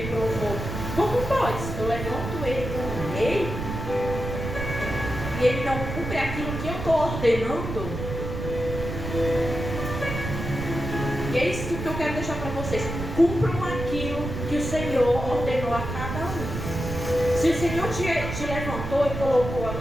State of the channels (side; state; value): right; noise; rumble, 6 dB below the sound